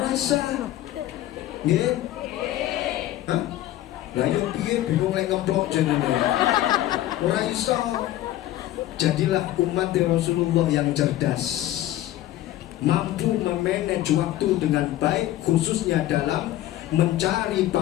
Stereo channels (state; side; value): quieter; right; 14.3 dB